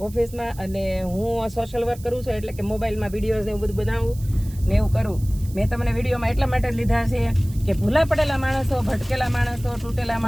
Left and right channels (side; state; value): right; noise; hiss, 21 dB below the sound